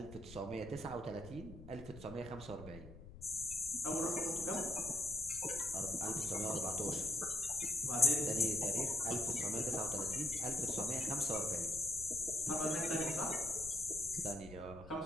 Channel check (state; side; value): noise; left; rumble, 15 dB below the sound